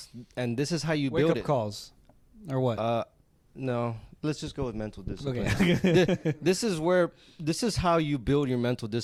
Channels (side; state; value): both; identical; correlation 1.00